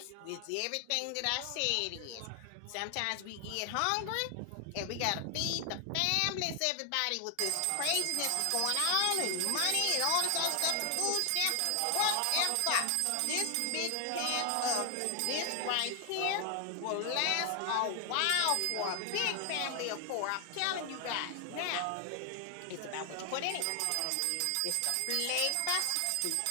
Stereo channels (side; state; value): both; different; correlation 0.00